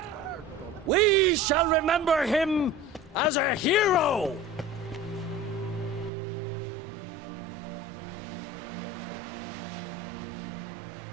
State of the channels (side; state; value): left; drops out; at 6.1 s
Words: We shall remember him as a hero.